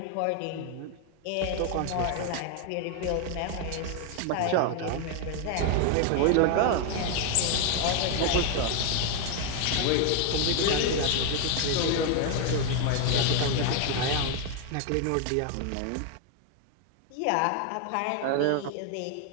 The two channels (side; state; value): both; different; correlation 0.00